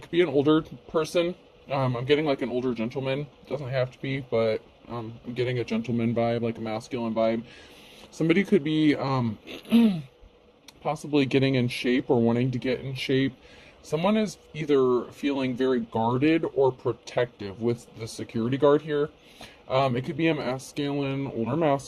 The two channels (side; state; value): both; identical; correlation 1.00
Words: could be an older person. I'm getting like an older gentleman. Doesn't have to be, but I'm getting a gentleman vibe, like a masculine vibe. Somebody could be possibly getting in shape or wanting to get in shape. Someone is either feeling very guarded or protective with the security guard here. It could be a masculine, older